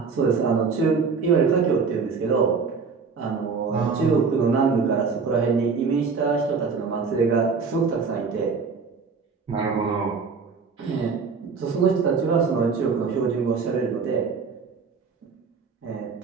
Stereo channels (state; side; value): quieter; left; 5.2 dB